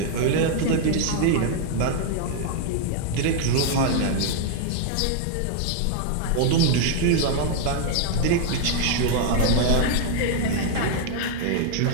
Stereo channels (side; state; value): both; different; correlation 0.00